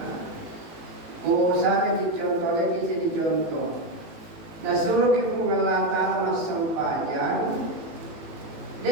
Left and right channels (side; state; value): left; late; 18 ms